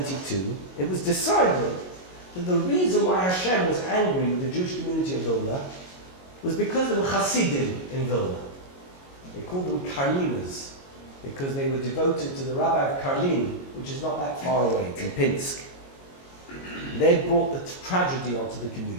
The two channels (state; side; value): late; right; 22 ms